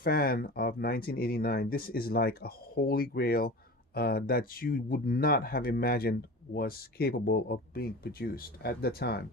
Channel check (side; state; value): both; normal; correlation 0.33